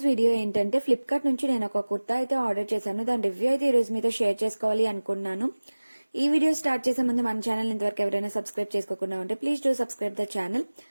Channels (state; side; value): inverted; both; correlation -1.00